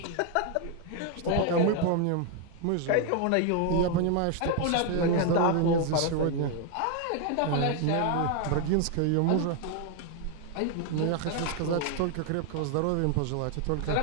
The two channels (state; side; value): different; both; correlation 0.01